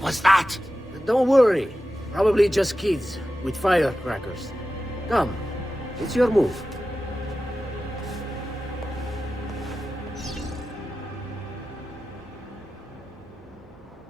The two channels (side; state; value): both; normal; correlation 0.93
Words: was that? Don't worry. Probably just kids with firecrackers. Come, it's your move.